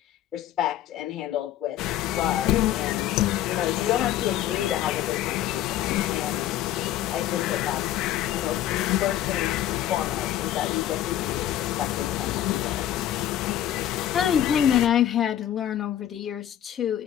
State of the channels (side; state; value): right; quieter; 12.0 dB